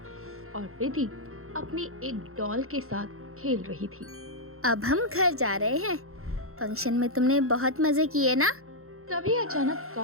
और प्रीति अपनी एक डॉल के साथ खेल रही थी। अब हम घर जा रहे हैं। फंक्शन में तुमने बहुत मजे किए ना? तभी अचानक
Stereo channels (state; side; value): late; left; 0.62 ms